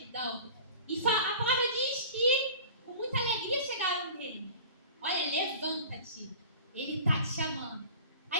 E a palavra diz que com muita alegria chegaram nele. Olha, levanta-te. Ele está te chamando.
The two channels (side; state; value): both; inverted; correlation -0.40